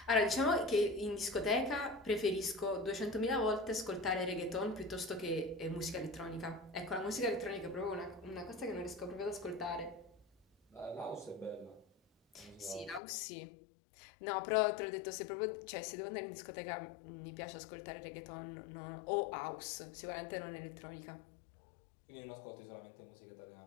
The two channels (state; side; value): drops out; right; at 13.0 s